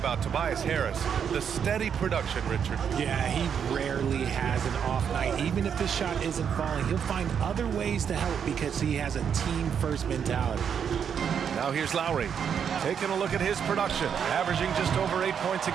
Tobias Harris, the steady production, Richard. Yeah, he rarely has an off night. Even if his shot isn't falling, he'll find other ways to help because he has a team-first mentality. Now here's Lowry, taking a look at his production, averaging just over 8 points a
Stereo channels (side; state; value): left; quieter; 7.7 dB